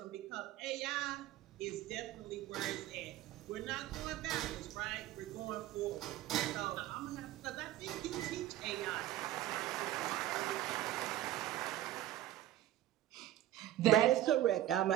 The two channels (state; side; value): quieter; left; 13.4 dB